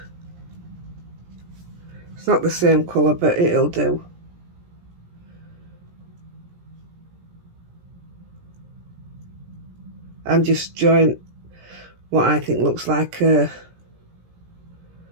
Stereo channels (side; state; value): left; late; 17 ms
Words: It's not the same colour, but it'll do. And just join what I think looks like a